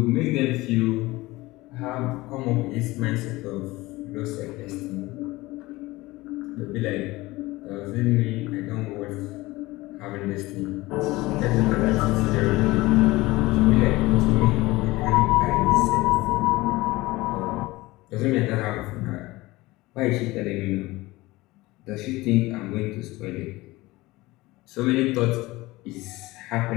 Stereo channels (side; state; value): right; quieter; 20.1 dB